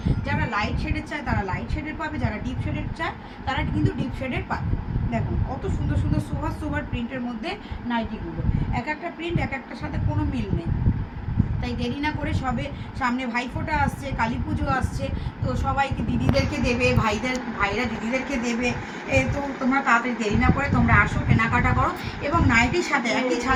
যারা লাইট শেডের চায় তারা লাইট শেডের পাবে, যারা ডিপ শেডের চায় তারা কিন্তু ডিপ শেডের পাবে। দেখুন কত সুন্দর সুন্দর সোভার প্রিন্টের মধ্যে নাইটিগুলো, এক একটা প্রিন্ট এক একটার সাথে কোনো মিল নেই। তাই দেরি না করে সবে সামনে ভাইফোঁটা আসছে, কালী পুজো আসছে, তো সবাইকে দিদিদেরকে দেবে, ভাইরা দিদিদেরকে দেবে, তো তোমরা তাড়াতাড়ি দেরি না করে তোমরা আসো, কেনাকাটা করো। এবং নাইটির সাথে একই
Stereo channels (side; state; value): both; identical; correlation 1.00